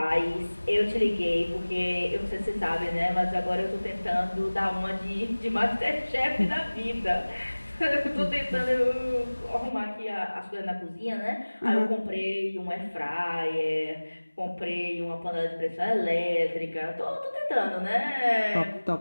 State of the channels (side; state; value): both; inverted; correlation -1.00